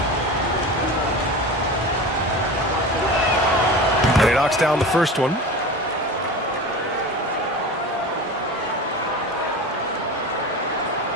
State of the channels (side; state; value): both; normal; correlation 0.31